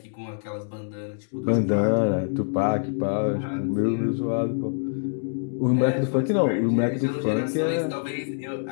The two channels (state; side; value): silent; right; digital silence